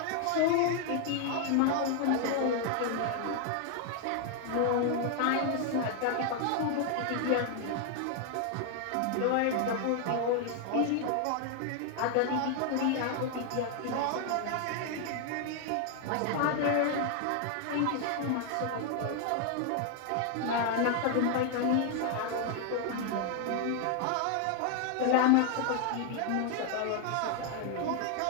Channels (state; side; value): different; both; correlation 0.00